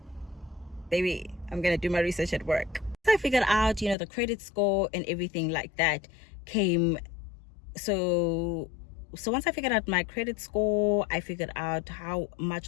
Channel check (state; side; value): drops out; right; at 4.0 s